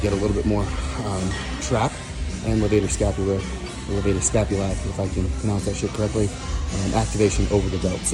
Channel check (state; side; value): identical; both; correlation 1.00